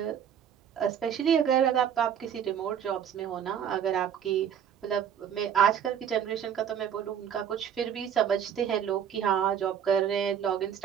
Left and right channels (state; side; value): quieter; left; 8.7 dB